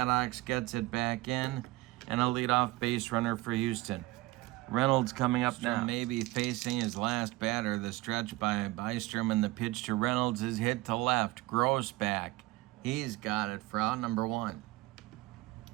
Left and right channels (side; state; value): left; quieter; 19.5 dB